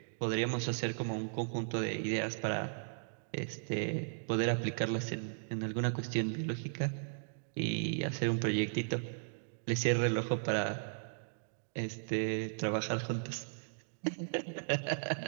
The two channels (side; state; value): left; silent; digital silence